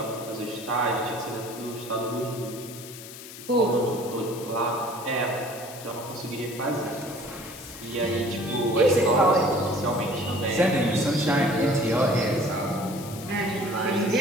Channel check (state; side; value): noise; left; hiss, 14 dB below the sound